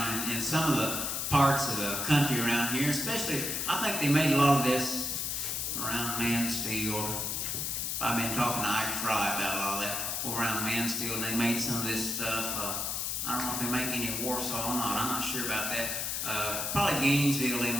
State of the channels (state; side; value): noise; left; hiss, 1 dB below the sound